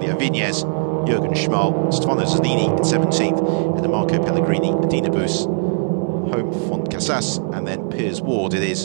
Vinez, Jürgen Schmal, Stefano Zanini in 17th, and Marco Pellegrini, Dina Bus, Home Font Casas, and then Piers Ward it is,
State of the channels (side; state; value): left; silent; 61 dB below the other